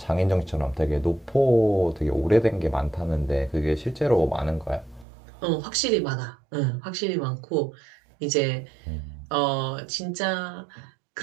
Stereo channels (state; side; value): drops out; left; at 5.1 s